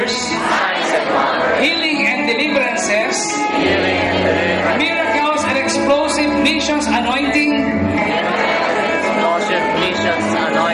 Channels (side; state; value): both; identical; correlation 1.00